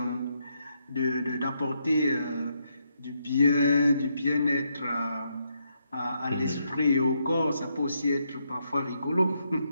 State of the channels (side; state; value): both; inverted; correlation -0.79